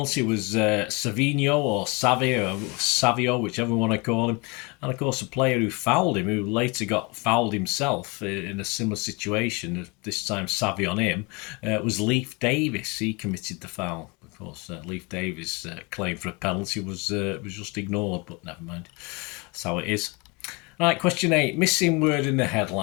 was Savino or Savio, whichever one I call him. And of course, the player who fouled him, who later got fouled himself in a similar situation, this time Savio on him, was Leif Davis. He committed the foul. Of course, Leif Davis' claim for a penalty was just ignored, but never mind. That's how it is. Right, question 8. Missing word in the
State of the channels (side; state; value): right; quieter; 28.7 dB